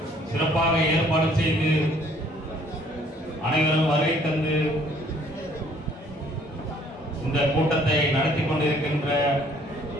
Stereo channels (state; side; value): normal; both; correlation 0.60